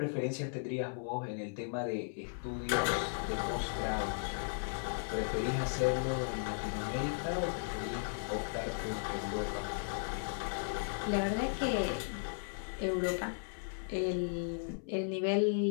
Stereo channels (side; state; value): right; silent; 54 dB below the other